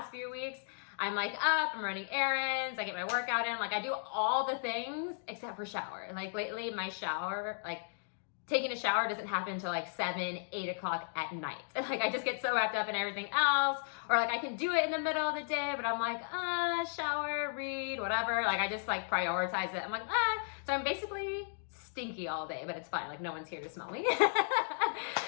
few weeks. I'm up, I'm running errands, I get my workout in, I do all the things except for shower. Lately my shower, taking a shower doesn't happen until 7, 8 o'clock at night. I just get so wrapped up in everything else, or I can do it in the middle of the day, but I'm shower, read, whatever. I just prioritize it. I'm so I'm basically stinky all day, but it's fine. No one's here to smell me.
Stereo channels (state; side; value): silent; right; digital silence